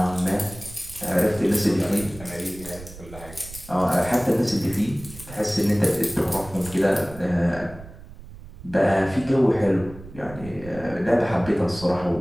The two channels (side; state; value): right; noise; rumble, 16 dB below the sound